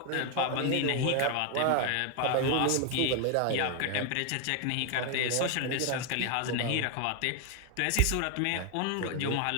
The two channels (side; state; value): both; different; correlation 0.01